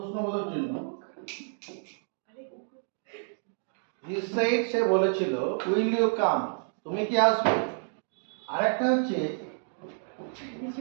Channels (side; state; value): left; silent; 58 dB below the other